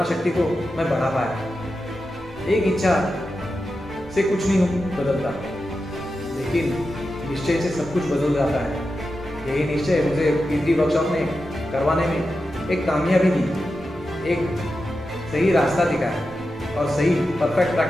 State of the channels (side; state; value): both; normal; correlation 0.90